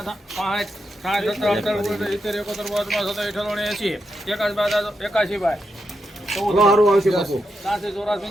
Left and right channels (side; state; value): both; normal; correlation 0.85